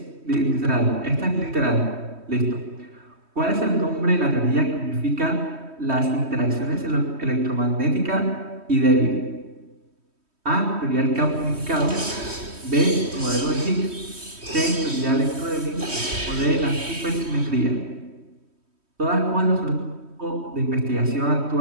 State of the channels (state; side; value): late; left; 3.1 ms